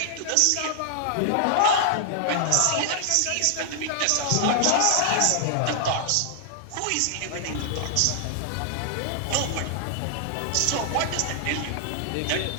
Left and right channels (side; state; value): both; different; correlation -0.01